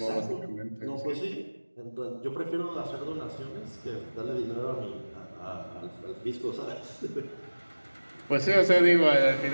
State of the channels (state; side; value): inverted; both; correlation -1.00